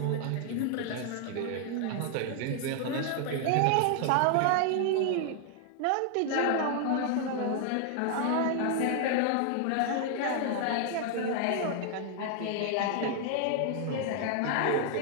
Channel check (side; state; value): both; different; correlation 0.00